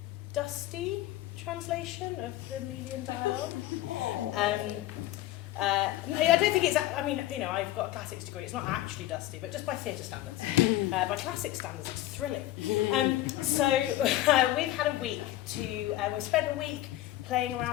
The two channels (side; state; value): right; quieter; 15.0 dB